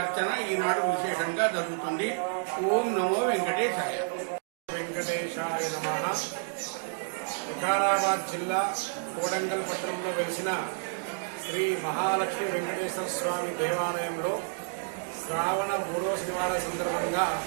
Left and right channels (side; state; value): left; silent; digital silence